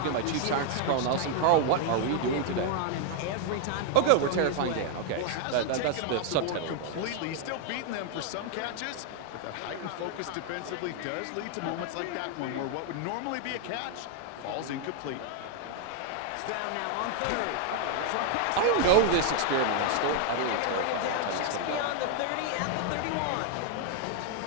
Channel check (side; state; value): both; different; correlation 0.00